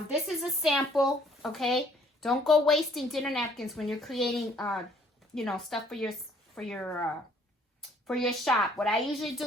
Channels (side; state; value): both; normal; correlation 0.61